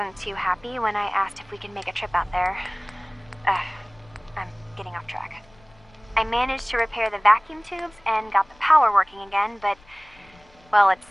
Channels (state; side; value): noise; left; rumble, 28 dB below the sound